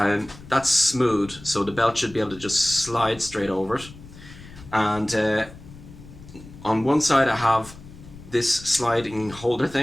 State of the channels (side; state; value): left; noise; rumble, 18 dB below the sound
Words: that's smooth, so the belt should be able to just slide straight over it. And on one side I have this sliding holder